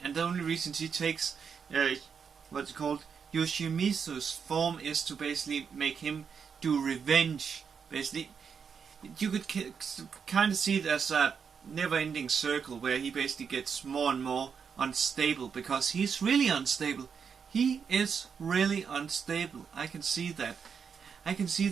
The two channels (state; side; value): quieter; left; 6.5 dB